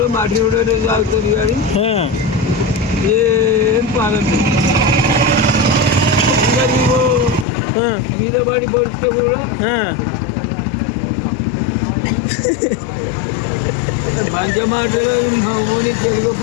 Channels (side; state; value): right; drops out; at 7.5 s